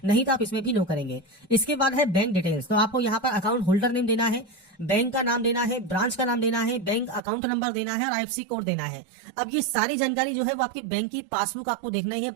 नहीं तो आप इसमें भी नो करेंगे। इसके बाद है बैंक डिटेल्स। तो आपको यहाँ पर अकाउंट होल्डर नेम देना है, बैंक का नाम देना है, ब्रांच का नाम देना है, बैंक अकाउंट नंबर देना है और आईएफएससी कोड देना है। अब ये सारी जानकारी जो है वो आपकी बैंक की पासबुक आपको देखना ही है।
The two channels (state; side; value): drops out; left; at 7.2 s